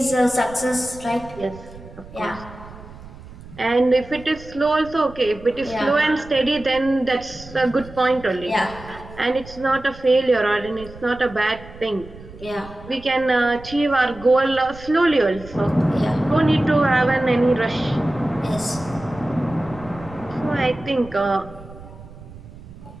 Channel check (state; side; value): noise; right; rumble, 17 dB below the sound